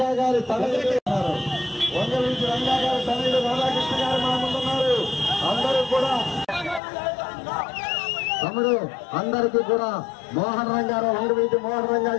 గారి తనయుడు వంగవీటి రంగా గారి తనయుడు రాధాకృష్ణ గారు మన ముందున్నారు. అందరూ కూడా తమ్ముడు అందరికీ కూడా మోహన్ రంగారావు వంగవీటి మోహన్ రంగా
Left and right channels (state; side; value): drops out; right; at 6.8 s